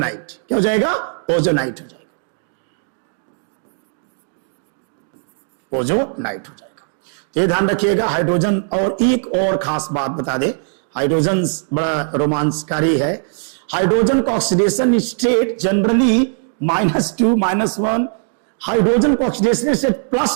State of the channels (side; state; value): left; silent; 67 dB below the other